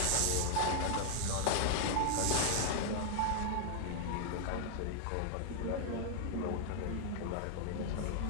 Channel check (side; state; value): both; different; correlation 0.00